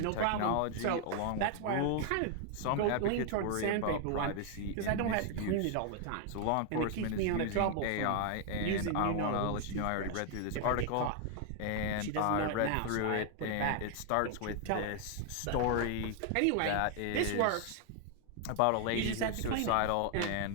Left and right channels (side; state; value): both; different; correlation 0.00